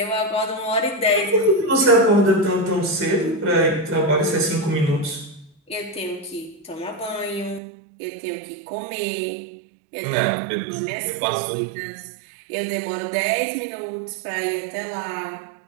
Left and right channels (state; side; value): drops out; left; at 7.6 s